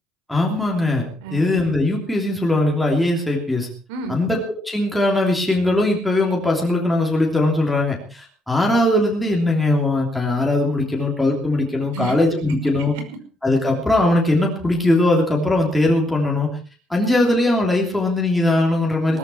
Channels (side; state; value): both; normal; correlation 0.76